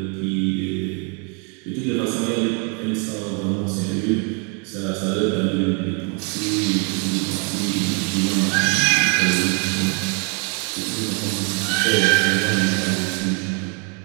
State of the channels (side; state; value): left; quieter; 35.9 dB